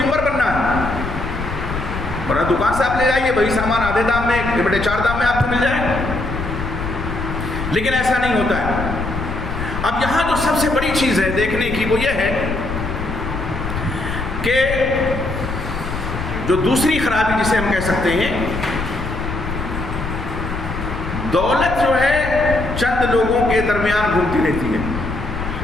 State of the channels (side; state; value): left; noise; rumble, 6 dB below the sound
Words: بننا ہے، ورنہ دکان سے آپ لے جائیے وہی سامان آدھے دام میں، بڑے 4 دام میں آپ کو مل جائے، لیکن ایسا نہیں ہوتا ہے۔ اب یہاں جو سب سے بڑی چیز ہے دیکھنے کی وہ یہ ہے کہ جو دوسری خرابی جسے ہم کہہ سکتے ہیں، دولت جو ہے چند لوگوں کے درمیان گھومتی رہتی ہے۔